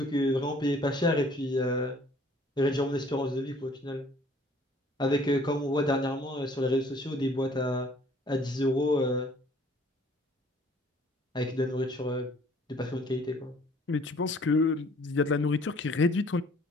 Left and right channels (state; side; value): normal; both; correlation 0.57